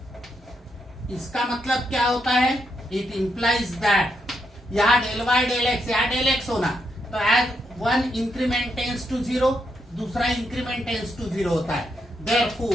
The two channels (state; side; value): normal; both; correlation 0.80